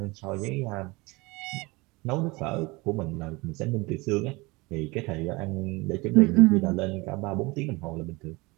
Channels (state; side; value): quieter; left; 24.0 dB